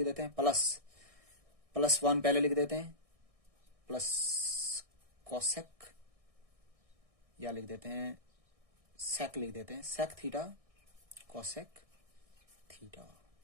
देते हैं, प्लस 1 पहले लिख देते हैं, प्लस कोसेक, या लिख देते हैं सेक, लिख देते हैं sec theta cosec theta.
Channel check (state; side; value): late; left; 1.6 ms